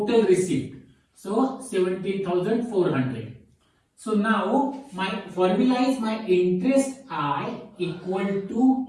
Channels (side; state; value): both; identical; correlation 1.00